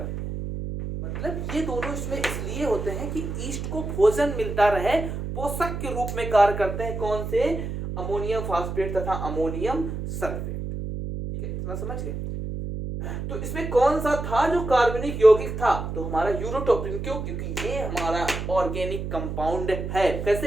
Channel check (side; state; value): right; noise; hum, 5 dB below the sound